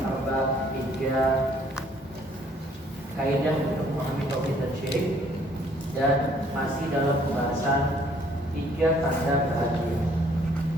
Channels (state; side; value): normal; both; correlation 0.62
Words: Arba', 3 kaidah untuk memahami tauhid dan syirik, dan masih dalam pembahasan 3 tanda bahagia.